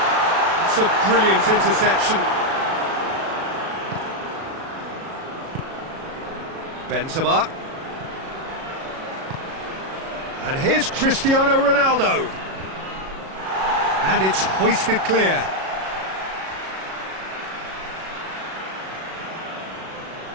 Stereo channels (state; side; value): late; left; 37 ms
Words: It's a brilliant interception. Benzema. And here's Cristiano Ronaldo. And it's hoisted clear.